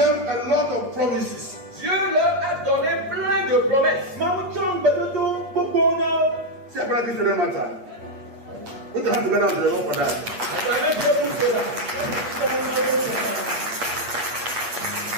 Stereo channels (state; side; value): late; left; 8.5 ms